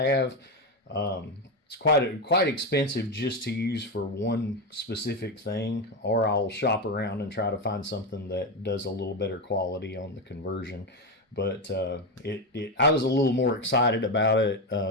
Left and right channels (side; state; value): both; normal; correlation 0.12